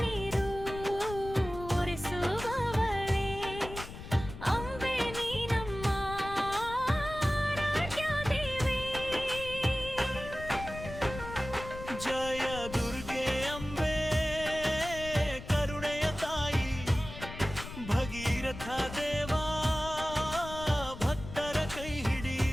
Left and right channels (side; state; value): left; noise; rumble, 11 dB below the sound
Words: ಒರೆಸುವವಳೇ ಅಂಬೆ ನೀ ನಮ್ಮ ಆರಾಧ್ಯ ದೇವಿ. ಜಯ ದುರ್ಗೆ ಅಂಬೆ ಕರುಣೆಯ ತಾಯಿ ಭಗೀರಥ ದೇವ ಭಕ್ತರ ಕೈ ಹಿಡಿ.